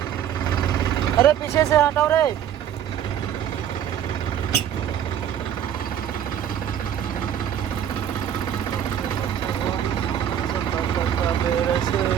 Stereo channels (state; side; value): quieter; left; 9.9 dB